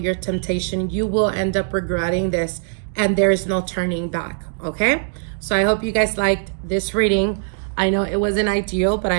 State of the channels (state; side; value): silent; left; digital silence